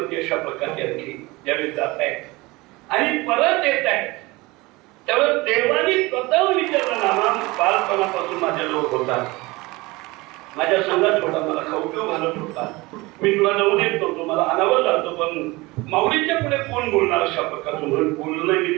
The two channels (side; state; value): left; quieter; 22.4 dB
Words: अशा प्रकारचे आणखी ज्यावेळी जात आहेत आणि परत येत आहेत त्यावेळेस देवानी स्वतः विचारलं नामा बालपणापासून माझ्या लोक होता माझ्या संघात होता मला खाऊ पिऊ घालत होता मी तुला जाऊ देत नव्हतो मला अनावर जातो पण माऊलीच्या पुढे कोण बोलणार अशा प्रकारचं म्हणून बोललं नाही. मी